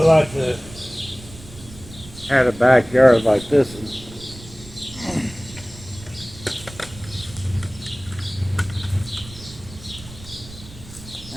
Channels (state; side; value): noise; right; rumble, 17 dB below the sound